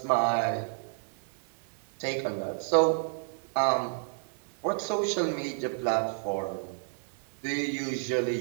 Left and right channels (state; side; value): silent; left; digital silence